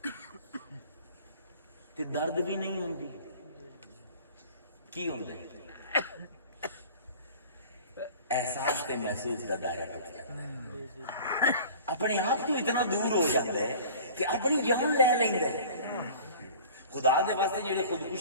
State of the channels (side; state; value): both; inverted; correlation -0.44